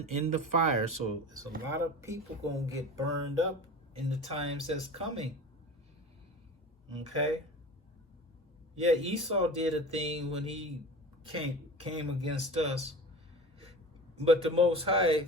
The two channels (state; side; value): normal; both; correlation 0.35